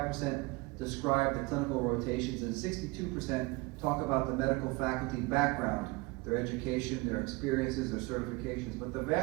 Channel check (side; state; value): left; quieter; 24.2 dB